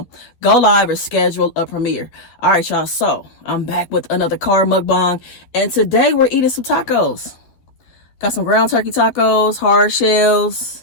go live, or schedule a premiere. All right, y'all. So I'm back with another car mukbang. And today we're eating some tacos. Got some ground turkey tacos, hard shells.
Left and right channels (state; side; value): late; right; 12 ms